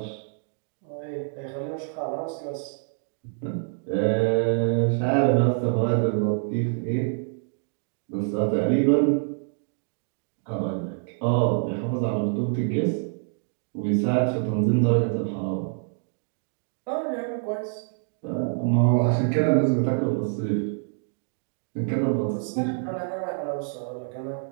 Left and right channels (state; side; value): silent; left; 61 dB below the other